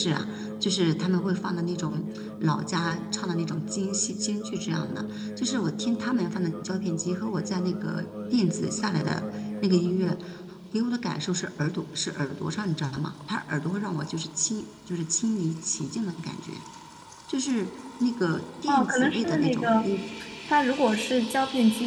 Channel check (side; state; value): both; identical; correlation 1.00